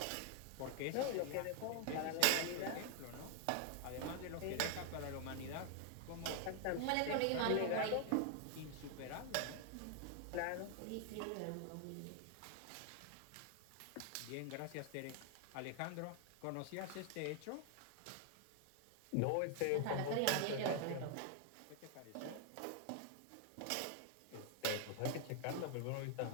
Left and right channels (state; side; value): different; both; correlation 0.00